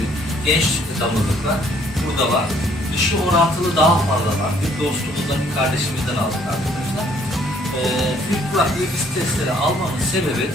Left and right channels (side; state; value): both; normal; correlation 0.63